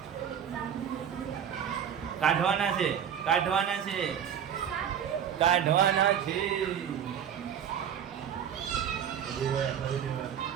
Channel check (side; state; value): left; quieter; 8.7 dB